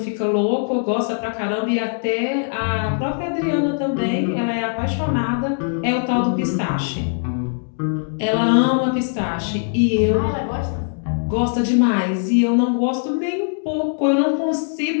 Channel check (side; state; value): right; silent; digital silence